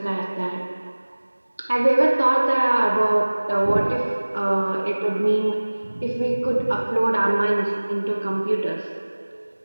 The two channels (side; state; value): both; inverted; correlation -1.00